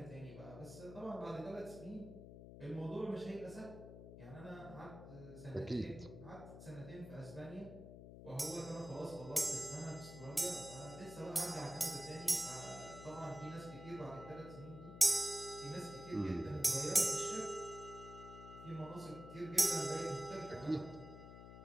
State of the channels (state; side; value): noise; left; hum, 12 dB below the sound